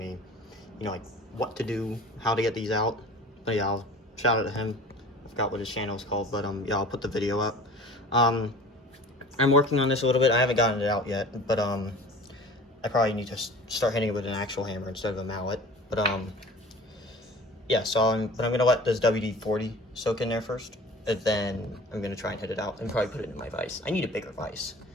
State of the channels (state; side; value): normal; both; correlation 0.42